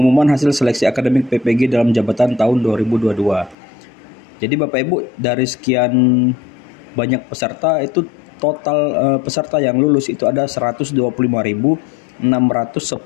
hasil seleksi akademik PPG dalam jabatan tahun 2022. Jadi Bapak Ibu, dari sekian banyak peserta itu total peserta yang lulus itu ada 125.610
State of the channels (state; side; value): drops out; right; at 3.6 s